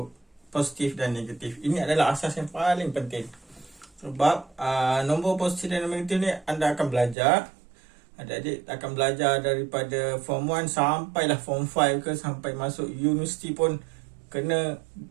positif dan negatif. Ini adalah asas yang paling penting. Sebab nombor positif dan negatif ni anda akan belajar. Adik-adik akan belajar daripada Form 1 sampailah Form 5 ke, sampai masuk universiti pun kena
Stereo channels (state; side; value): drops out; left; at 7.2 s